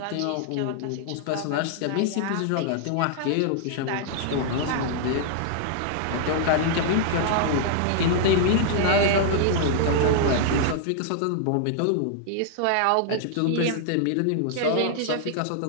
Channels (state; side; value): different; both; correlation -0.01